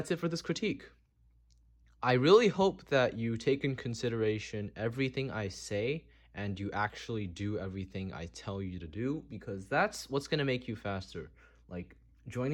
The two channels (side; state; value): both; identical; correlation 1.00